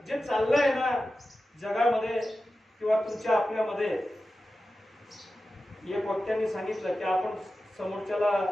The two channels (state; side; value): normal; both; correlation 0.93